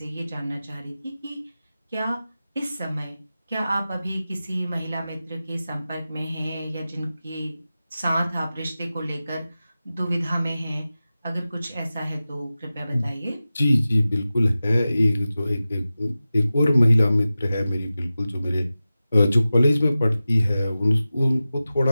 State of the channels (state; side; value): inverted; both; correlation -0.95